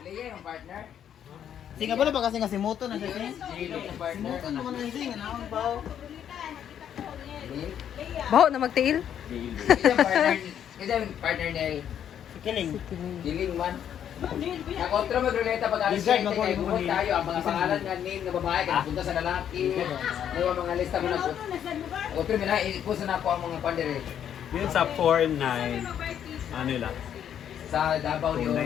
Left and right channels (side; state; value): right; quieter; 9.4 dB